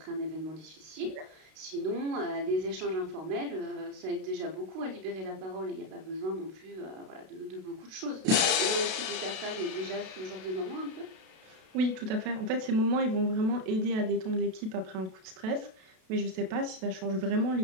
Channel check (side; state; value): left; late; 32 ms